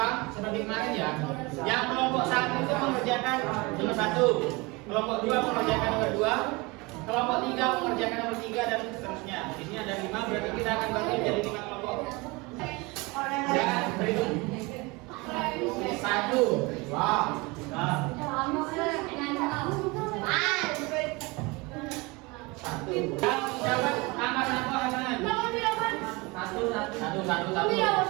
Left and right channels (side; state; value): left; quieter; 25.3 dB